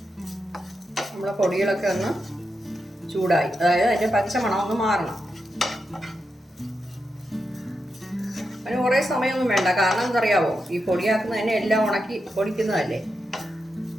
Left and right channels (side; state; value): both; normal; correlation 0.87